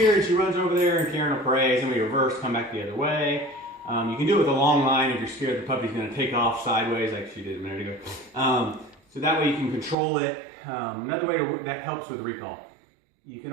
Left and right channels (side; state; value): left; drops out; at 10.0 s